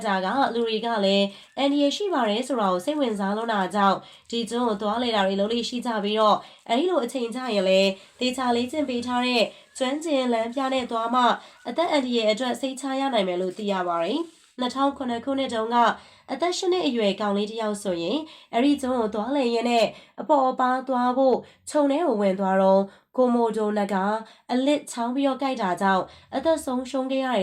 တာကလူတွေကလည်းအန်ဒီရရှိပါတယ်ဆိုတာကိုစိတ်ဝင်စားလို့တာကြောင့်ဒီကျွန်းကိုသွားလေတာတွေလုံးလေးရှိကြပြီးတော့အဲဒီလိုအချိန်ကြရင်လည်းဒေချာလေးကျင့်ပေးထားတဲ့ကျွမ်းကျင်လမ်းပြနဲ့သွားမှအသက်အန်ဒီရဲ့အတွက်စိတ်ချရနိုင်မယ်လို့သိရပါတယ်။2009ခုနှစ်တုန်းကအသက်8နှစ်အရွယ်ကောင်လေးတစ်ယောက်ဆိုရင်အဲ့ဒီကျွန်းကိုသွားလေရင်နဲ့အပေါ်အပါသွားဖို့ခြုံထဲကိုဝင်သွားတော့ကိုမိုဒိုနဂါအလစ်ချောင်းပြီးတော့ကြိုက်တာကြောင့်အသက်ဆုံးရှုံးခဲ့ရတယ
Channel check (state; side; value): identical; both; correlation 1.00